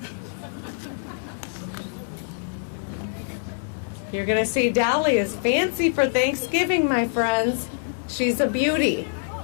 You're going to see Dolly is fancy for Thanksgiving, my friends. She's a beauty.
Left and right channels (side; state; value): right; silent; digital silence